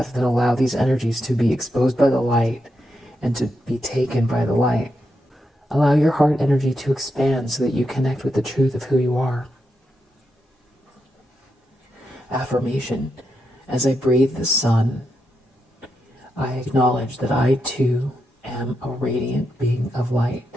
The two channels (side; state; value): both; normal; correlation 0.84